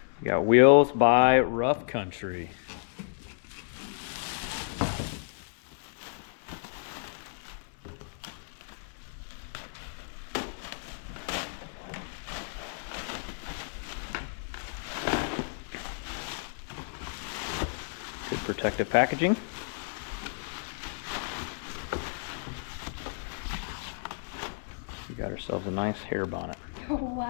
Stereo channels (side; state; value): right; silent; digital silence